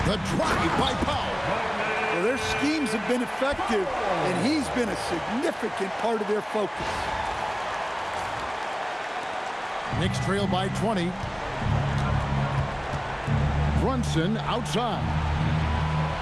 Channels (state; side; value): identical; both; correlation 1.00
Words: The drive by Powell. Well, their schemes have been effective, and he's been a significant part of their focus. Knicks trail by 20. Brunson outside.